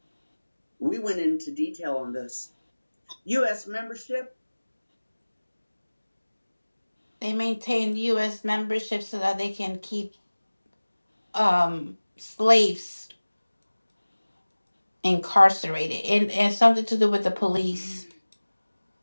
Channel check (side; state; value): both; inverted; correlation -1.00